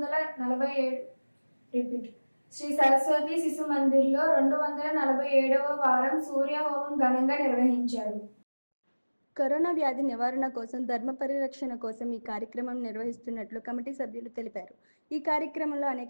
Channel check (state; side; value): inverted; both; correlation -1.00